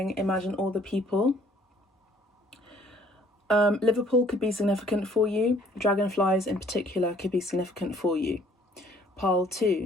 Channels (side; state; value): both; normal; correlation 0.59